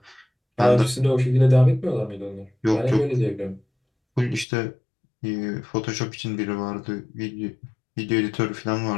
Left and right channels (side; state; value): right; drops out; at 4.5 s